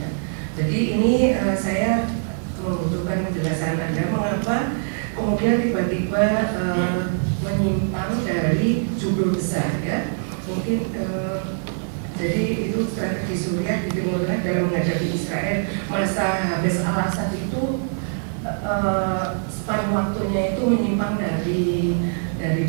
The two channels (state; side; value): silent; left; digital silence